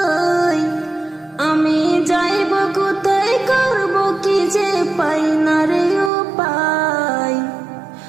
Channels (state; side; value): drops out; left; at 6.1 s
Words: আমি যাইব কোথায়, করব কি যে পাই না রে উপায়।